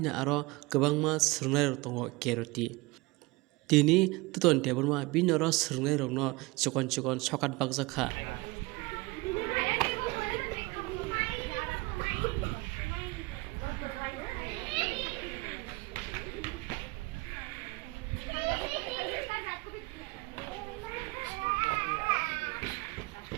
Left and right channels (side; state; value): left; quieter; 23.5 dB